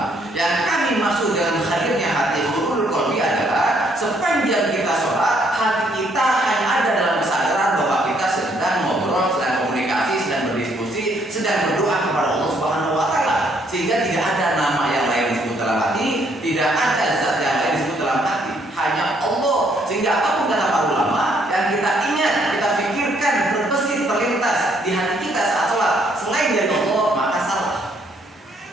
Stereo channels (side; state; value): both; normal; correlation 0.68